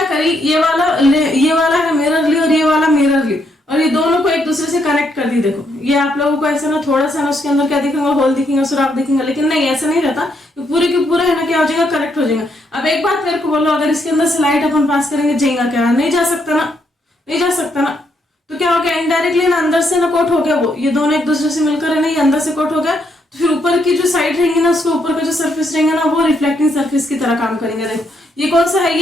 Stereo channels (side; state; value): both; normal; correlation 0.76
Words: करी, ये वाला है मिरर ली और ये वाला मिरर ली, और ये दोनों को एक दूसरे से कनेक्ट कर दी। देखो ये आप लोगों को ऐसा ना थोड़ा सा ना उसके अंदर क्या दिखेगा, होल दिखेगा, सुराख दिखेगा, लेकिन नहीं ऐसा नहीं रहता, तो पूरे के पूरा है ना क्या हो जाएगा, कनेक्ट हो जाएगा। अब एक बात मेरे को बोलो, अगर इसके अंदर से लाइट अपन पास करेंगे जाएगा क्या, नहीं जा सकता ना, नहीं जा सकता ना। तो क्या हो गया, इनडायरेक्टली ना अंदर से ना कोट हो गया, वो ये दोनों एक दूसरे से मिलकर है ना ये अंदर से कोट हो गया। तो फिर ऊपर की जो साइड रहेंगी ना, उसके ऊपर का जो सरफेस रहेंगे ना वो रिफ्लेक्टिंग सरफेस की तरह काम करेंगे। देखो ये कौन सा है,